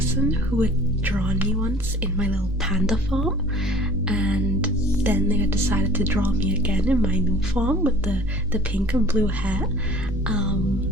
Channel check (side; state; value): both; normal; correlation 0.48